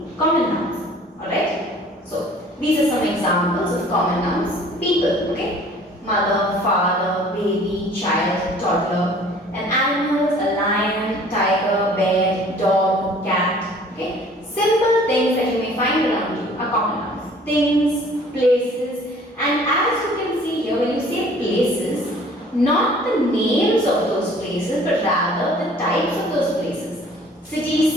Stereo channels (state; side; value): normal; both; correlation 0.52